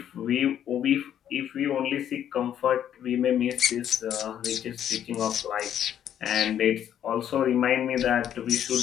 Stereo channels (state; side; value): quieter; right; 10.1 dB